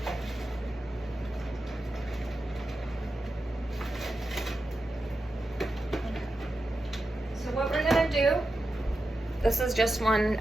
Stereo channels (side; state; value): both; normal; correlation 0.90